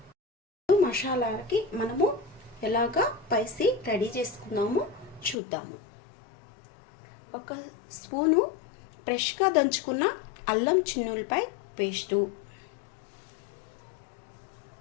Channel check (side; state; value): right; drops out; at 5.4 s